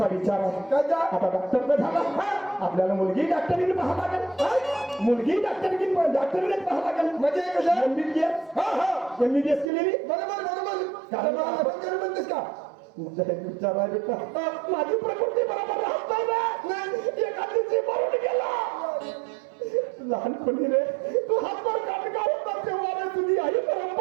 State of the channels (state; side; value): drops out; left; at 9.7 s